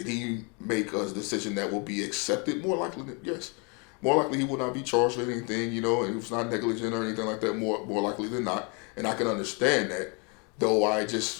he make a decision that will be accepted? More likely, yes. More likely he will not be charged with anything, you know, and he was not negligent or anything like that, more likely than not. And I can understand that, though I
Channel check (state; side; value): quieter; right; 33.2 dB